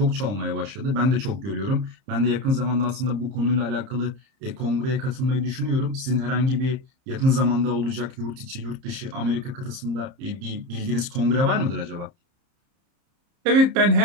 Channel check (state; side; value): late; left; 30 ms